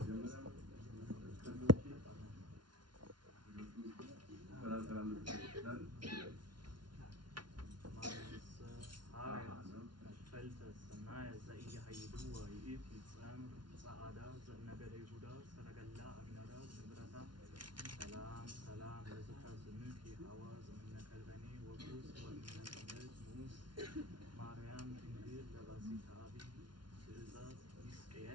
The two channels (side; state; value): left; late; 0.71 ms